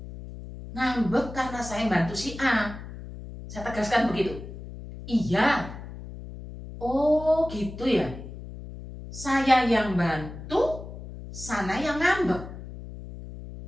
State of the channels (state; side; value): noise; left; hum, 12 dB below the sound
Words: Ngambek karena saya bantu si A. Saya tegaskan begitu. Iya. Oh gitu ya. Saya yang bantu, sana yang ngambek.